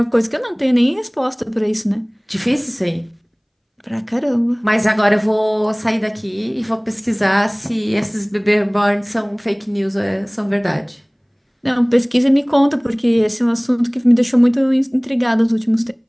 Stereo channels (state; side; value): identical; both; correlation 1.00